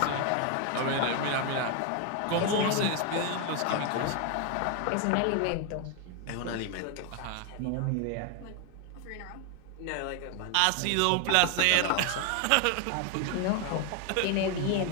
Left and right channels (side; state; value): both; different; correlation 0.01